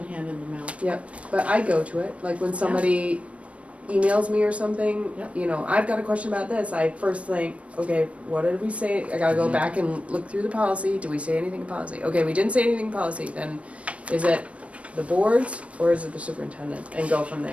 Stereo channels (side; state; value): left; late; 0.063 ms